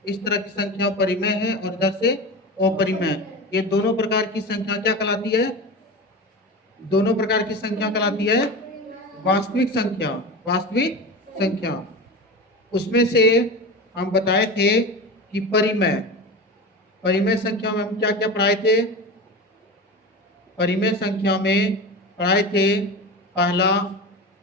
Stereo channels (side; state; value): both; normal; correlation 0.27